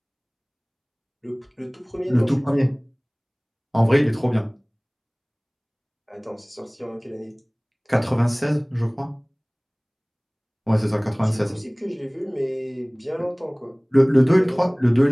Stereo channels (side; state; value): both; identical; correlation 1.00